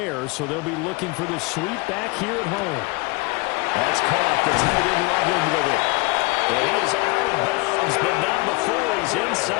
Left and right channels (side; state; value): right; quieter; 25.6 dB